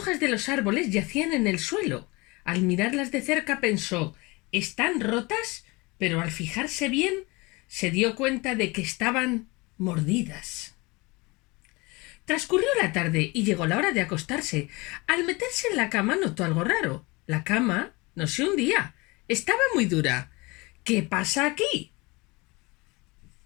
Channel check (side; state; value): right; quieter; 24.8 dB